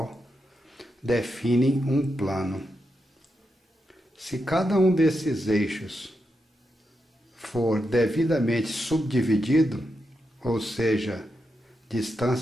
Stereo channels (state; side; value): normal; both; correlation 0.86